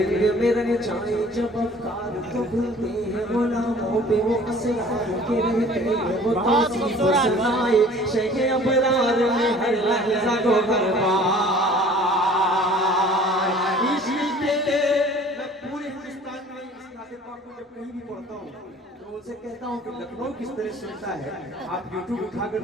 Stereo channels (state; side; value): normal; both; correlation 0.49